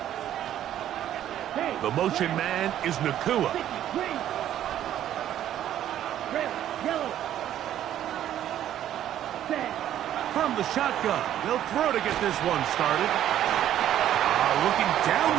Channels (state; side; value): quieter; left; 11.5 dB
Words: The motion man is Nakua. From the shotgun, they'll throw to get this one started. Looking down